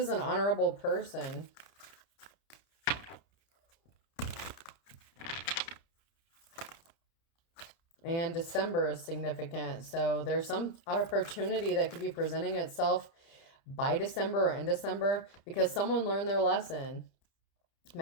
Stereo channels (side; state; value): right; late; 30 ms